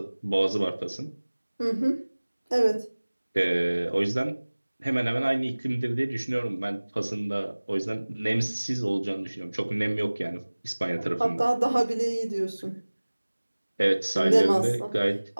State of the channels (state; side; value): inverted; both; correlation -1.00